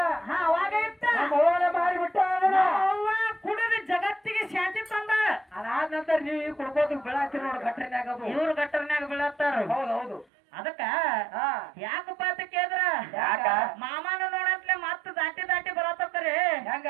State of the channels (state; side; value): drops out; left; at 10.2 s